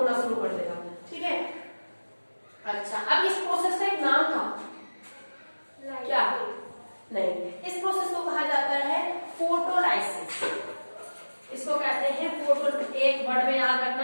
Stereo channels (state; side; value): inverted; both; correlation -1.00